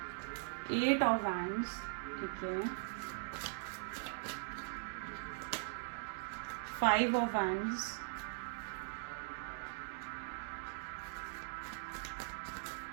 8 of Wands, ठीक है, 5 of Wands,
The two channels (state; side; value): silent; left; digital silence